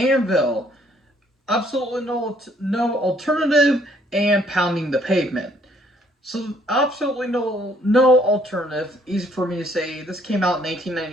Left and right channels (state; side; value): normal; both; correlation 0.65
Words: Absolutely no alternative and Pounding the Pavement. So absolutely no alternative. Easy for me to say. This came out in